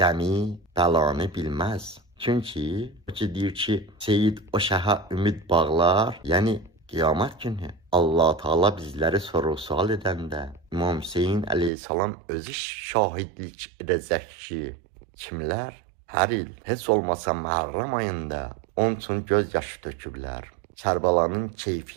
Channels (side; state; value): left; drops out; at 11.7 s